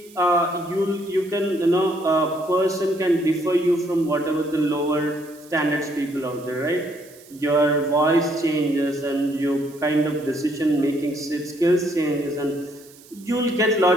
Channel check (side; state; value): right; noise; hiss, 24 dB below the sound